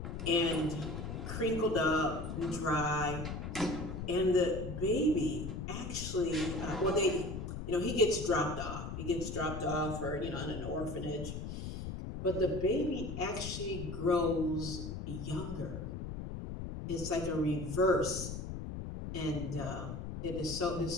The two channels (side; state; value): left; noise; rumble, 6 dB below the sound